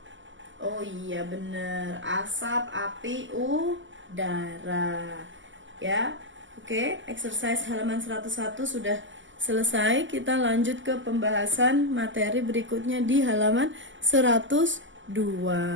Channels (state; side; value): late; left; 0.55 ms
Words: Oh iya bener, asap, api, udara. Ya. Oke, exercise halaman 101 sudah selesai. Kita lanjut ke pembahasan materi berikutnya di halaman 102.